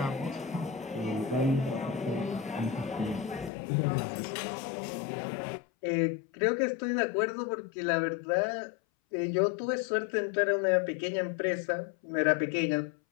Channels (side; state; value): right; drops out; at 3.5 s